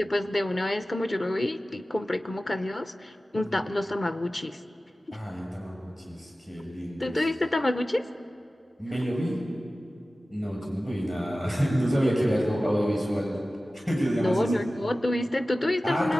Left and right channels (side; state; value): both; normal; correlation 0.96